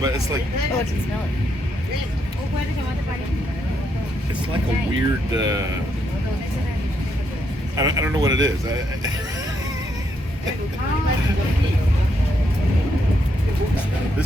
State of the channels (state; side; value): normal; both; correlation 0.77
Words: but it's like Oh, I can smell it. it's like a weird. I don't know what it is.